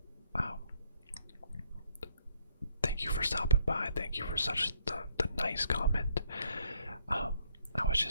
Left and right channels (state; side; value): inverted; both; correlation -0.69